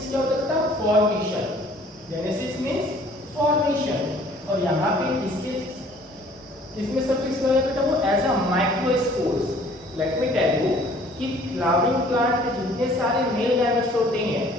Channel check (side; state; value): both; normal; correlation 0.55